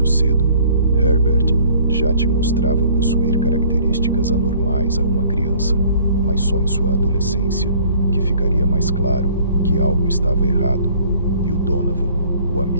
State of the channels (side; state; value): both; inverted; correlation -0.55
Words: cedo, Herbert já te mostrava possuir características anormais a uma criança, mas só em sua adolescência que ficaria mais claro que algo estava errado. E o Donovan, o